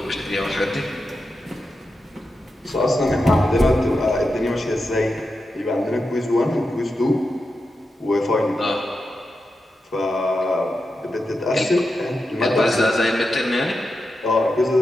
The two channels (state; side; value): normal; both; correlation 0.89